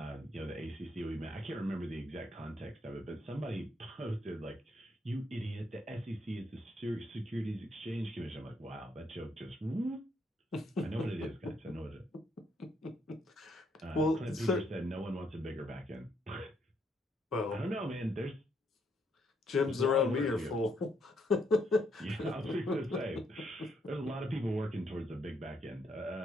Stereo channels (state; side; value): normal; both; correlation 0.74